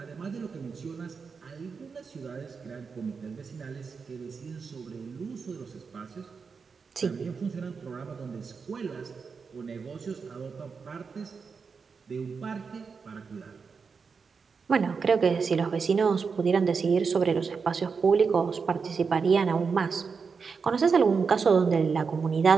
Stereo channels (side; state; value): left; quieter; 5.4 dB